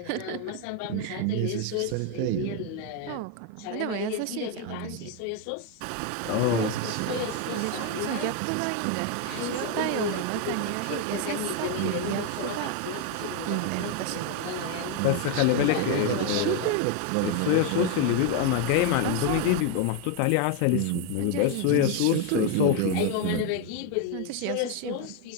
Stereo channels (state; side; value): different; both; correlation 0.01